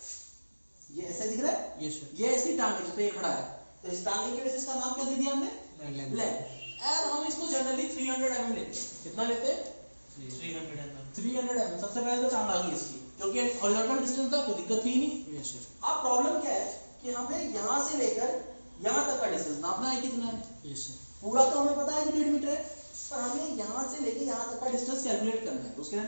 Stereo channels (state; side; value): inverted; both; correlation -1.00